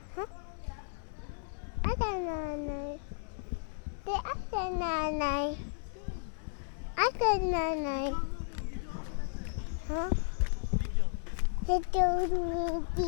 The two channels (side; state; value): right; silent; 55 dB below the other